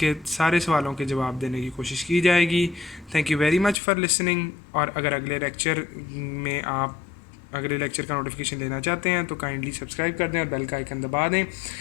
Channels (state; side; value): drops out; right; at 3.8 s